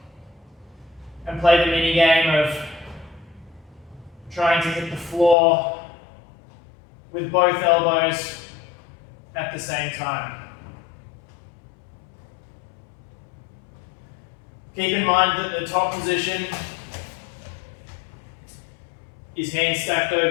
And play the mini game of trying to hit the floor with both elbows at the same time. Keep in mind that the top position is hands stacked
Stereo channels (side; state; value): right; drops out; at 5.4 s